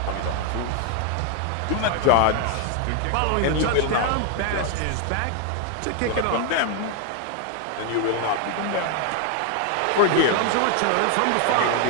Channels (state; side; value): different; both; correlation 0.01